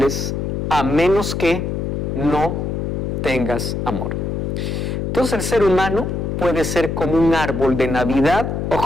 a menos que no tengas amor. Entonces el ser humano puede ser como un árbol de Navidad o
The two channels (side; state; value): left; noise; hum, 2 dB below the sound